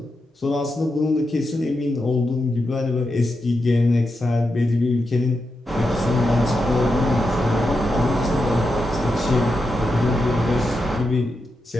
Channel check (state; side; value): normal; both; correlation 0.87